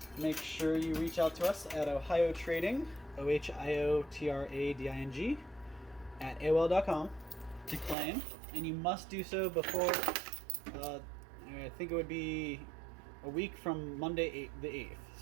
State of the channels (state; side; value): drops out; left; at 8.0 s